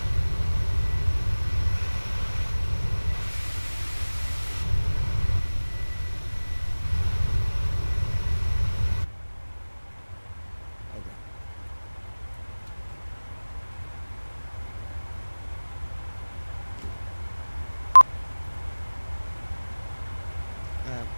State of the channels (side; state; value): both; inverted; correlation -1.00